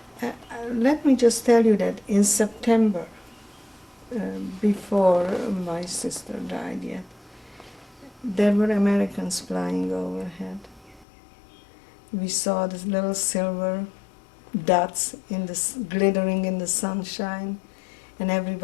Let me just tell you that in September, before my sister died yet, there were Americans flying overhead. We saw these little silver dots glittering in the sunshine, and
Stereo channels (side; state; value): right; drops out; at 11.1 s